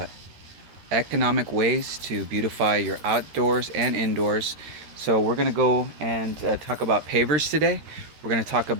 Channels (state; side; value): late; left; 13 ms